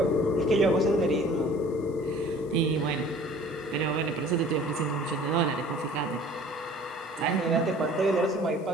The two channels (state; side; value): noise; left; hiss, 28 dB below the sound